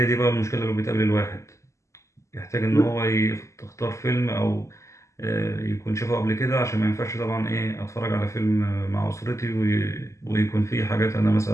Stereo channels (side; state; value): right; late; 0.14 ms